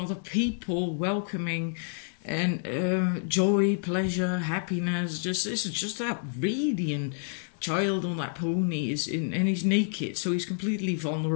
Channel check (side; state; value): right; silent; 59 dB below the other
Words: people, welcoming, and joy, pleasure, happiness. This is just that radiant child on that pony and he's naked, so he's completely